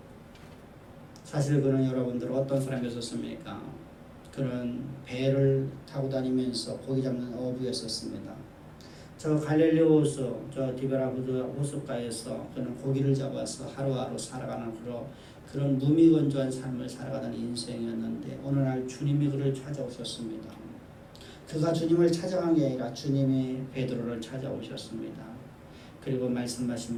사실 그는 여러분들 어떤 사람이었습니까? 그는 배를 타고 다니면서 고기 잡는 어부였었습니다. 저 갈릴리 호수, 저 디베라부드 호숫가에서 그는 고기를 잡아서 하루하루 살아가는 그런 무미건조한 삶을 살아가던 인생이었는데 어느 날 주님이 그를 찾아오셨습니다. 그가 주님을 찾아간 게 아니라 주님이 베드로를 찾아오셨습니다. 그리고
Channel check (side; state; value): both; identical; correlation 1.00